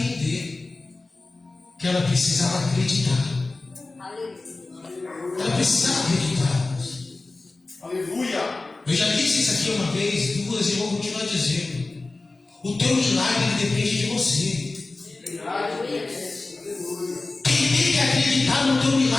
que ela precisava acreditar. Ela precisava acreditar. Aleluia. Eu já disse isso aqui uma vez, duas, e vou continuar dizendo. O teu milagre depende de você. Quem tem que acreditar no teu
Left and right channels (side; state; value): right; quieter; 3.3 dB